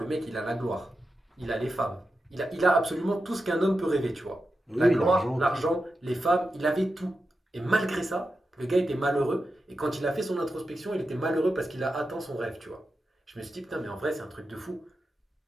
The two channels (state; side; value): normal; both; correlation 0.90